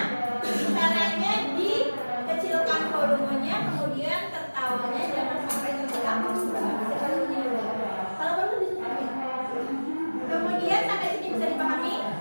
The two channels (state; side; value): inverted; both; correlation -1.00